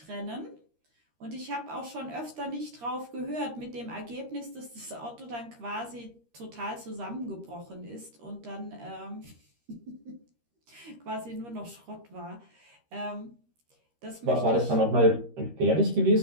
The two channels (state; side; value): late; left; 13 ms